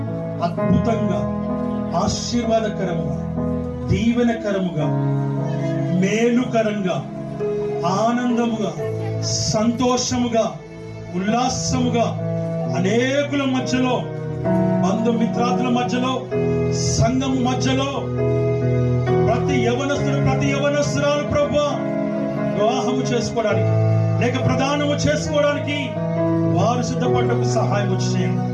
అద్భుతంగా, ఆశీర్వాదకరముగా, దీవెనకరముగా, మేలుకరంగా, ఆనందముగా, సంతోషముగా, ఉల్లాసముగా అనేకుల మధ్యలో, బంధుమిత్రాదుల మధ్యలో, సంఘము మధ్యలో ప్రతి యవనస్తుడు, ప్రతి యవనస్తురాలు ప్రభువా వివాహము చేసుకోవడానికి లేక ప్రదానము చేసుకోవడానికి వారు సిద్ధపడటకు సహాయం చేయండి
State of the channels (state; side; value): identical; both; correlation 1.00